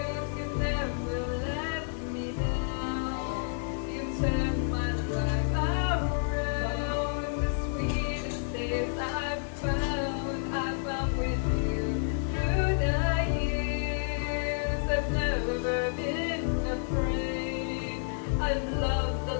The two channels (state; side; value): silent; right; digital silence